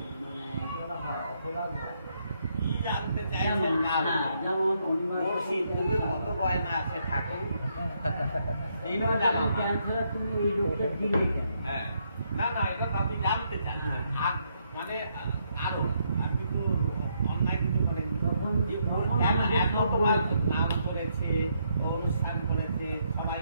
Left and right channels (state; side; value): inverted; both; correlation -0.75